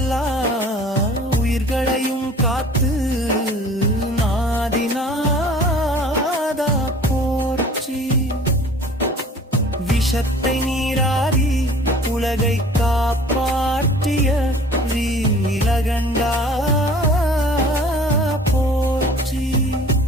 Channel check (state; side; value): normal; both; correlation 0.48